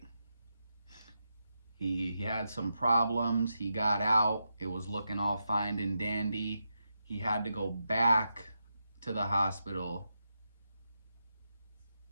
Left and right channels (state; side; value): inverted; both; correlation -0.86